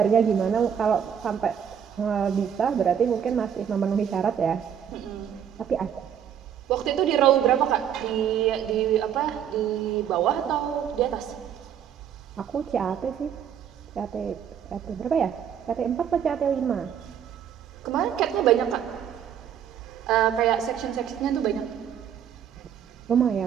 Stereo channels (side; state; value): left; quieter; 8.8 dB